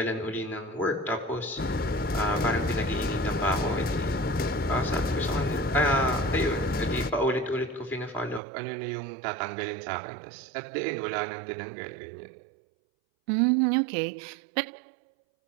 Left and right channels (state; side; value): drops out; left; at 8.4 s